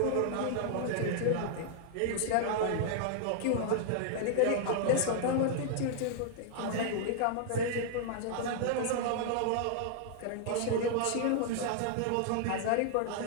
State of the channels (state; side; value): different; both; correlation -0.01